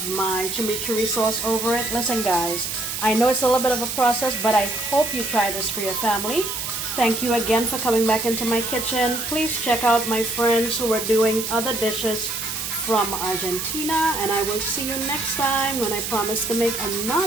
my chimichurri sauce over it. Listen guys, I know it's a little bit of a process, but I hope you try this for your family. Thank you again for coming back into my kitchen. Please check out my friends who are doing other dishes from Argentina, and I will see you next time when I promise to make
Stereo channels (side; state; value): right; noise; hiss, 4 dB below the sound